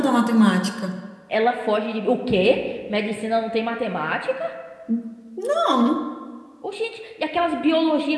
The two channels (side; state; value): both; identical; correlation 1.00